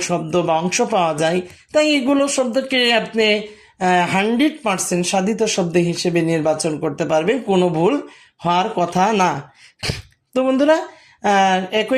শব্দ বা অংশ পাওয়া যায়, তাই এগুলো শব্দকে আপনি 100% সাধিত শব্দ হিসেবে নির্বাচন করতে পারবেন, কোনো ভুল হওয়ার কথা না। তো বন্ধুরা,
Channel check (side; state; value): both; identical; correlation 1.00